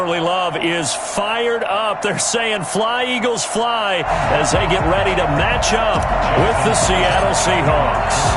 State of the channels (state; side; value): identical; both; correlation 1.00